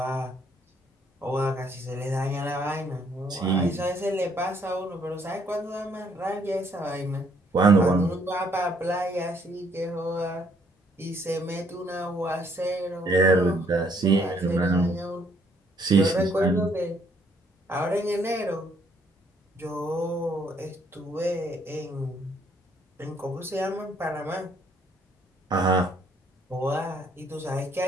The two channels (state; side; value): normal; both; correlation 0.67